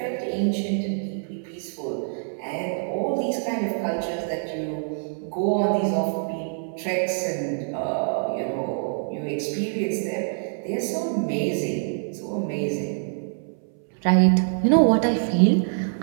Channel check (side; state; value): left; silent; 62 dB below the other